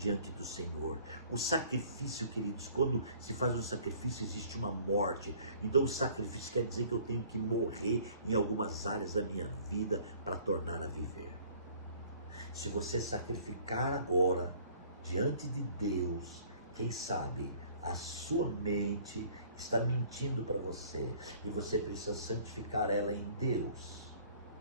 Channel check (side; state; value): both; inverted; correlation -0.54